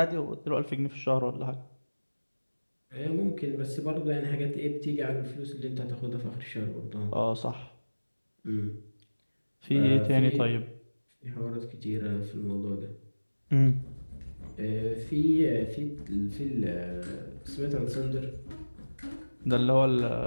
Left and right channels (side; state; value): both; inverted; correlation -1.00